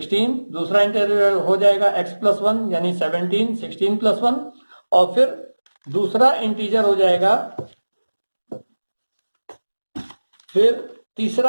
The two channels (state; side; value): inverted; both; correlation -1.00